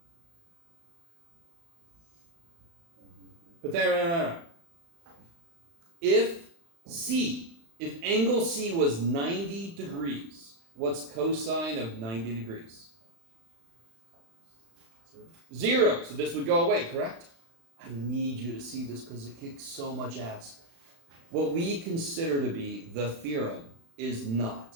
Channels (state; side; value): late; left; 36 ms